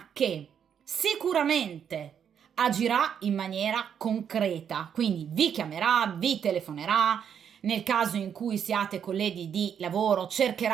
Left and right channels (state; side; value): quieter; left; 8.2 dB